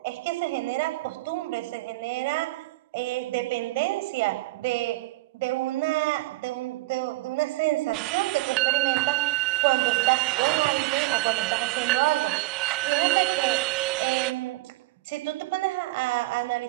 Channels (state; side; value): quieter; left; 20.3 dB